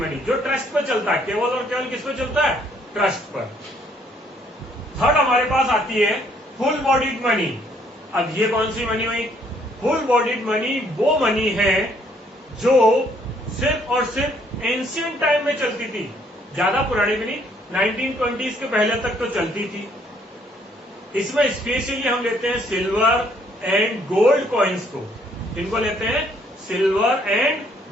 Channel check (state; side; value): normal; both; correlation 0.66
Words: जो ट्रस्ट पर चलता है। केवल और केवल किस पर चलता है? ट्रस्ट पर। थर्ड हमारे पास आती है फुल बॉडीड मनी। अब ये कौन सी मनी हुई? फुल बॉडीड मनी वो मनी है जो सिर्फ और सिर्फ एंशियंट टाइम में चलती थी, ज्यादा पुरानी भी नहीं, 1920s के पहले तक तो चलती थी। इसमें स्पेशली हम लेते हैं सिल्वर एंड गोल्ड कॉइन्स को। इनको लेते हैं सिल्वर एंड